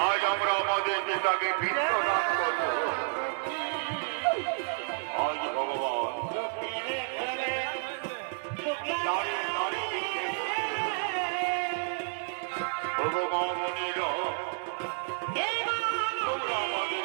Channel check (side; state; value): left; silent; digital silence